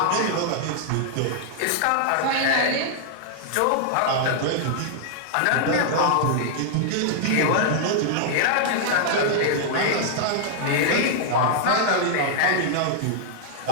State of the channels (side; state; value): both; different; correlation -0.01